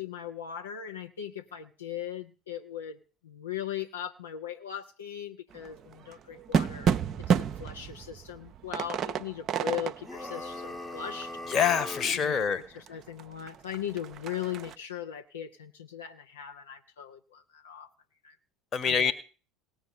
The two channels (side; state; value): both; normal; correlation 0.48